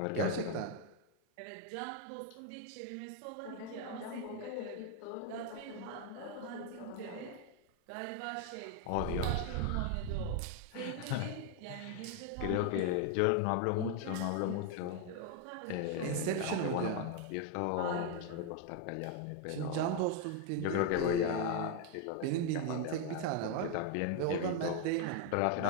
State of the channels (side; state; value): both; different; correlation 0.00